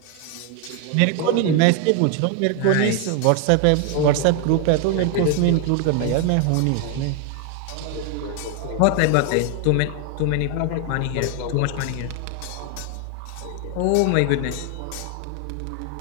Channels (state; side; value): different; both; correlation 0.01